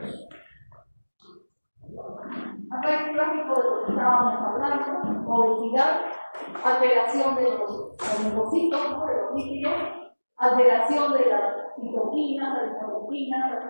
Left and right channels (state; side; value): inverted; both; correlation -1.00